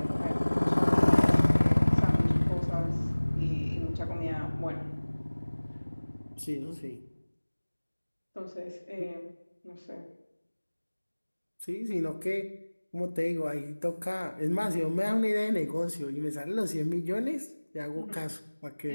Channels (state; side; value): inverted; both; correlation -1.00